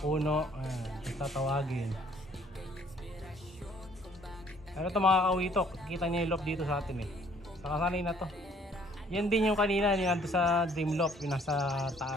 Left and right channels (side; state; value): both; normal; correlation 0.60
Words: Ayan, tatawagin. Ano ito mga kawitok, kita niya yung loop dito sa atin eh. Sakasanay na to. Yan din yung kanina, yung nandun sa dream loop, yung nasa